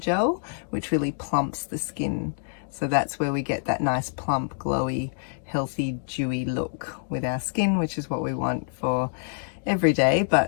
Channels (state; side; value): silent; right; digital silence